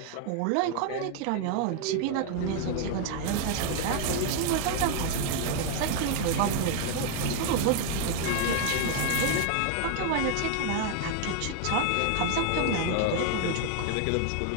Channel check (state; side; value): different; both; correlation 0.00